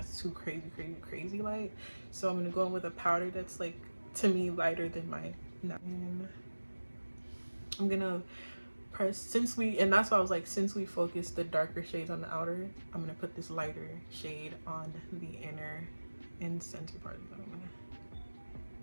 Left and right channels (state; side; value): inverted; both; correlation -1.00